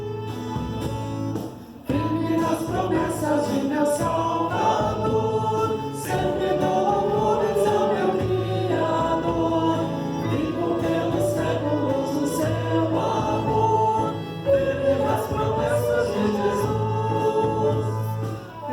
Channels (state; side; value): identical; both; correlation 1.00